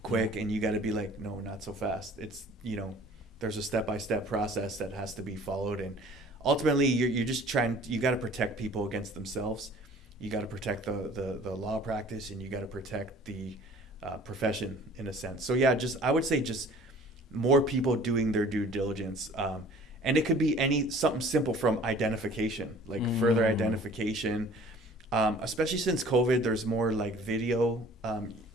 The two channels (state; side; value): normal; both; correlation 0.49